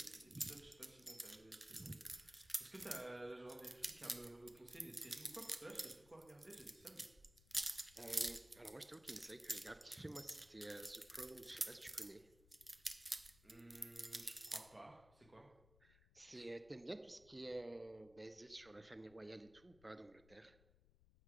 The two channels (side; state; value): left; noise; rumble, 23 dB below the sound